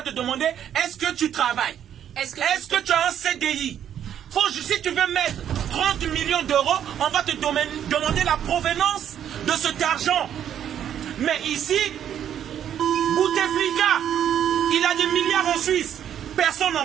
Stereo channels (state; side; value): quieter; left; 9.8 dB